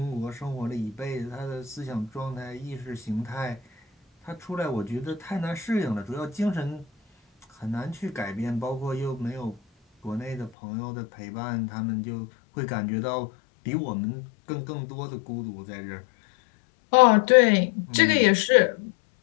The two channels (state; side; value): drops out; right; at 10.5 s